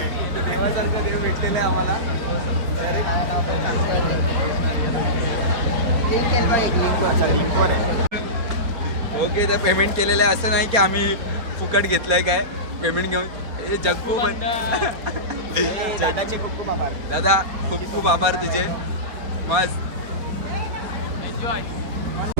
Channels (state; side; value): late; left; 4.4 ms